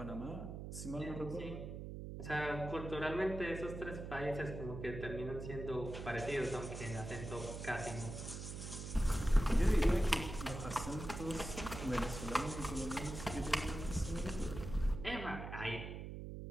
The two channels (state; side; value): noise; right; hum, 7 dB below the sound